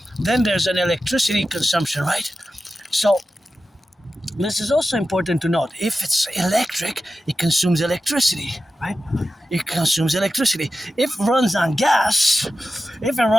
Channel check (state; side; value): normal; both; correlation 0.92